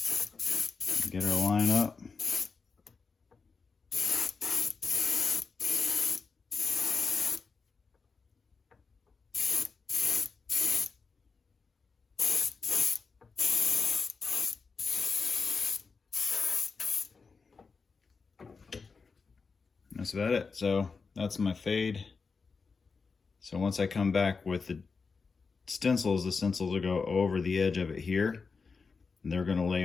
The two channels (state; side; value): quieter; right; 4.9 dB